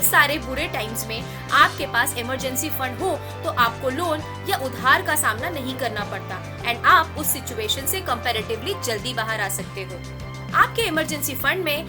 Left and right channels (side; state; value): both; identical; correlation 1.00